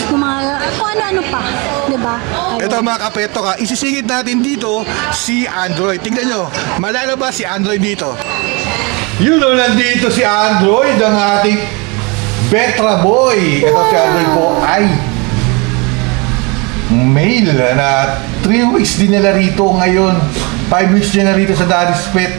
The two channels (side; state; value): left; quieter; 28.8 dB